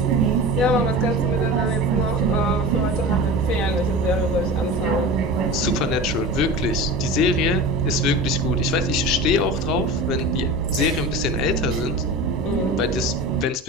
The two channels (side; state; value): both; normal; correlation 0.32